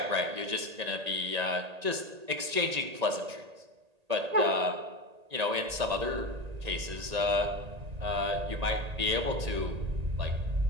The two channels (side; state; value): left; late; 1.8 ms